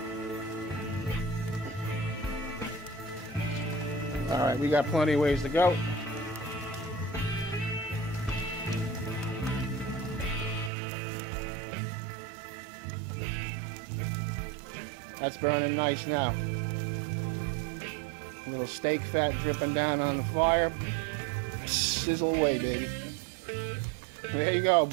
Alright, we got plenty of ways to go. That's burning nice now. A little steak fat dripping down on the fire. Sizzle away, baby. There you go,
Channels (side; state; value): left; drops out; at 10.7 s